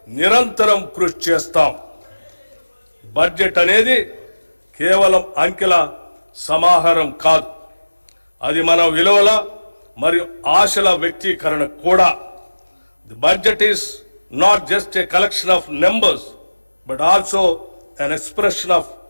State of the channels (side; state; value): both; inverted; correlation -1.00